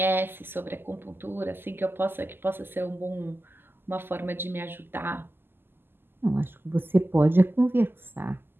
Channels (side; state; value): left; late; 0.10 ms